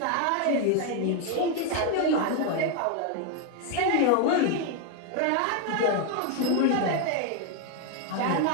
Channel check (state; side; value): different; both; correlation 0.01